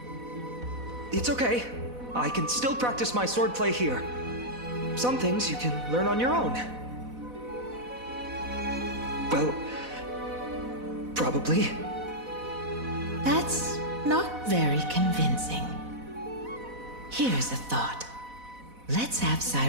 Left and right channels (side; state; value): left; late; 4.1 ms